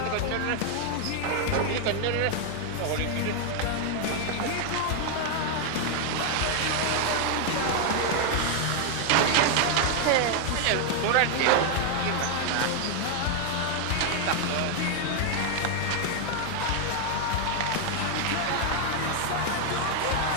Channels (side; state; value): both; different; correlation 0.00